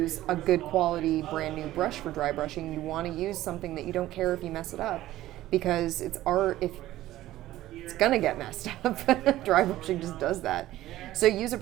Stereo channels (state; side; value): quieter; left; 15.1 dB